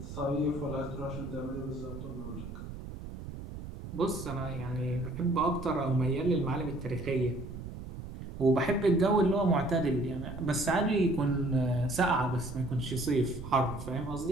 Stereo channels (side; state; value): right; noise; rumble, 10 dB below the sound